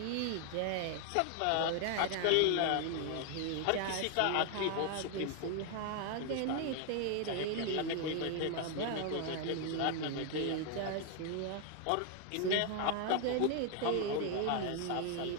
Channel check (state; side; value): different; both; correlation 0.00